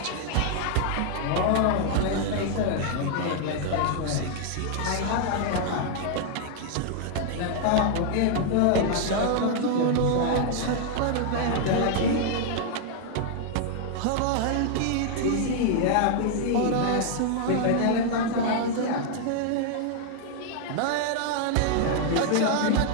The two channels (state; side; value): different; both; correlation 0.00